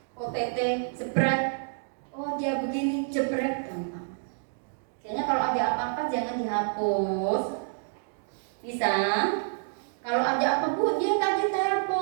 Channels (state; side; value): silent; left; digital silence